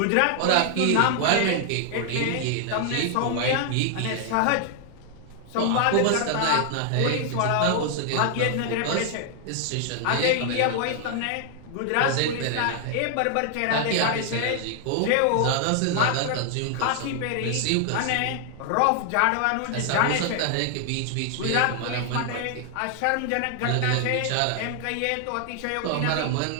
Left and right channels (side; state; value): both; different; correlation 0.00